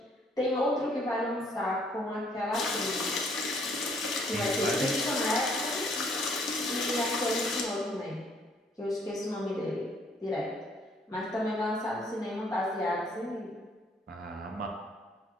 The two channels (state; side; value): normal; both; correlation 0.64